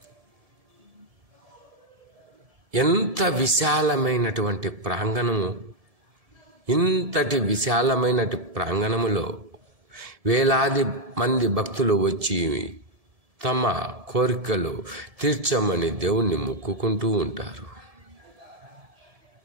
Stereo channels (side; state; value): left; late; 1.7 ms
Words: ఎంత విశాలమైనటువంటి ప్రాంగణము! ఇంతటి విశాలమైనటి ప్రాంగణములో వేలాది మంది భక్తులు వచ్చి తమ కోరికలు తీర్చమని దేవుణ్ణి మొక్కుకుంటూ ఉంటారు.